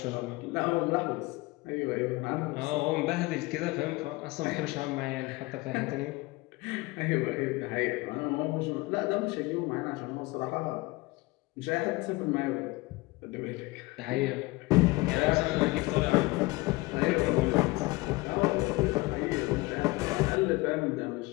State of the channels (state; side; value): quieter; right; 22.6 dB